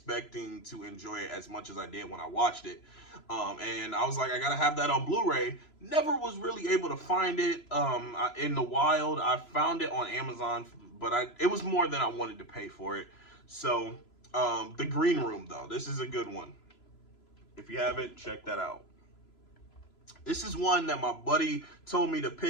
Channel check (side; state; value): right; late; 3.0 ms